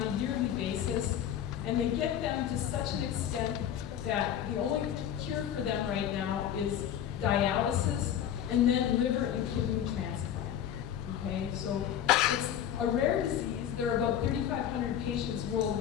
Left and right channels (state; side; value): quieter; right; 10.0 dB